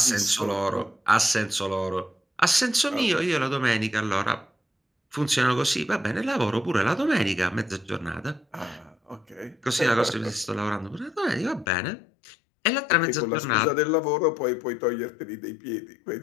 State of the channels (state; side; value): drops out; right; at 11.7 s